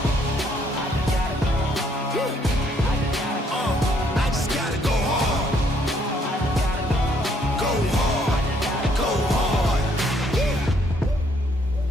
I just gotta go hard. Go hard. Go hard.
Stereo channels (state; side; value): normal; both; correlation 0.68